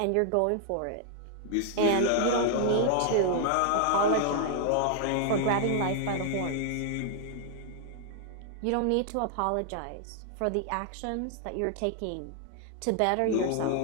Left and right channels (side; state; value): both; different; correlation -0.01